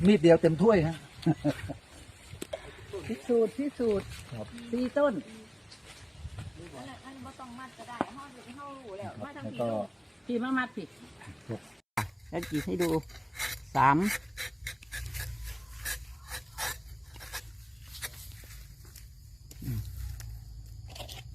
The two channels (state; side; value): identical; both; correlation 1.00